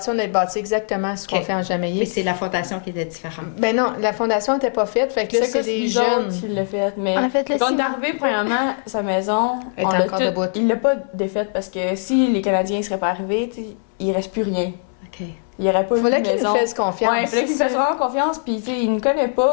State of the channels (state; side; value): silent; right; 65 dB below the other